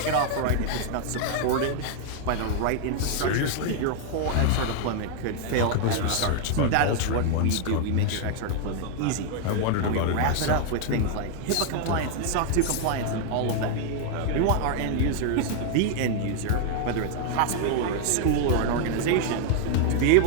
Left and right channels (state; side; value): different; both; correlation 0.00